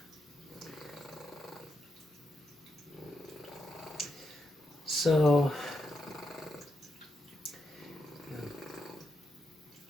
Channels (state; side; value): normal; both; correlation 0.83